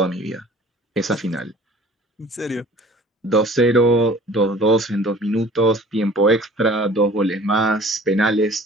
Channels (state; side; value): normal; both; correlation 0.48